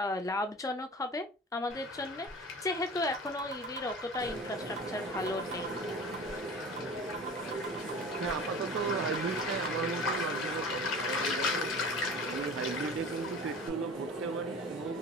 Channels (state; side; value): normal; both; correlation 0.39